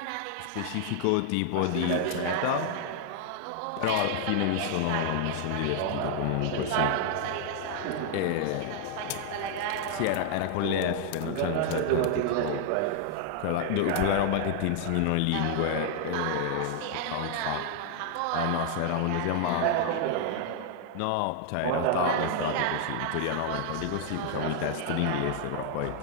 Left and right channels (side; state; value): both; different; correlation 0.00